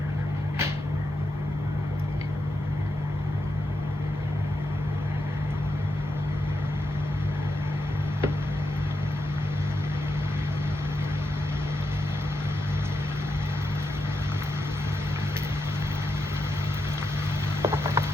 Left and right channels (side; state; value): both; normal; correlation 0.85